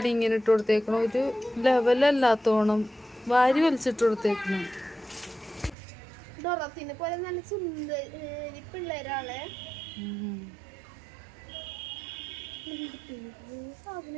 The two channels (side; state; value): left; drops out; at 5.8 s